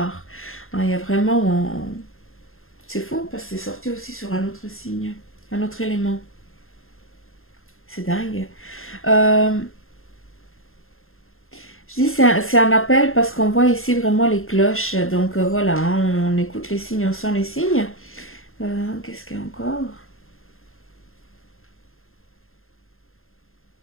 Hein, il y a vraiment... C'est fou parce que c'est sorti aussi sur un autre signe, un autre élément. C'est dingue. Euh, Je dis c'est un appel parce qu'on voit ici vraiment les cloches. Donc voilà, hein, on écoute les signes, on sent les signes. Qu'est-ce qu'il y a encore?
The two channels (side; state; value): right; late; 0.61 ms